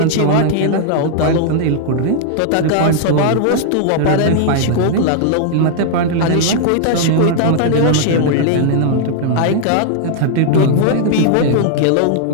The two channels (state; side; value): different; both; correlation -0.01